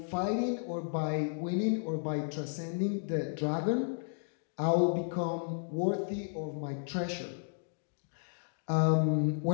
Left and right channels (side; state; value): right; silent; digital silence